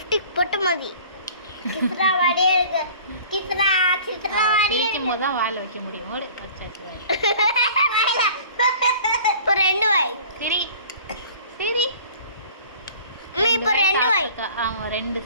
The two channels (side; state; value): both; inverted; correlation -0.47